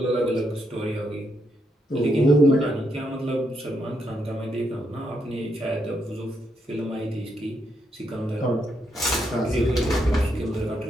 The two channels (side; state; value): both; normal; correlation 0.79